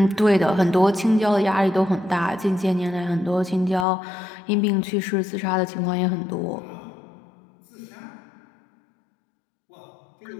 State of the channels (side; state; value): right; drops out; at 3.9 s